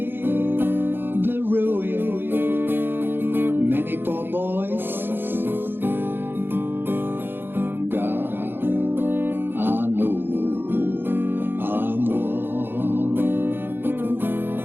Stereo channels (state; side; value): late; left; 0.10 ms